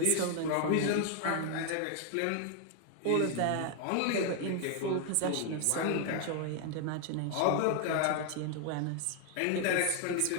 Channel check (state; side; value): different; both; correlation 0.00